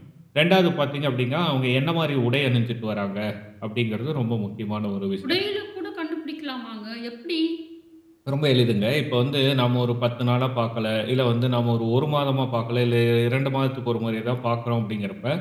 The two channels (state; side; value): identical; both; correlation 1.00